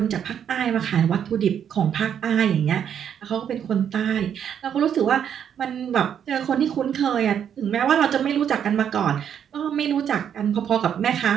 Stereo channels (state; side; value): quieter; left; 8.7 dB